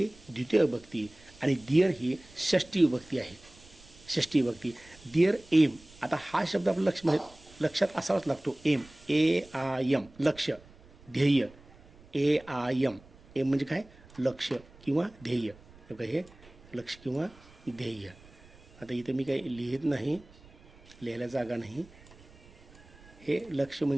द्वितीय विभक्ती आणि दिअर ही षष्टी विभक्ती आहे. दिअर एम. आता हा शब्द आपल्या लक्षात असावाच लागतो. एम, AIM, लक्ष्य, ध्येय. AIM, एम म्हणजे काय? लक्ष्य किंवा ध्येय. हे लक्ष्य किंवा ध्येय. आता इथं मी काही लिहित नाही, लिहायला जागा नाही. हे लक्ष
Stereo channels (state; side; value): noise; right; rumble, 24 dB below the sound